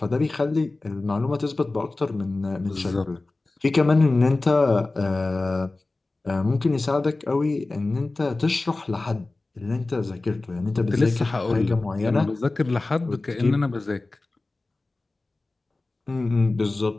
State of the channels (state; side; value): quieter; right; 3.2 dB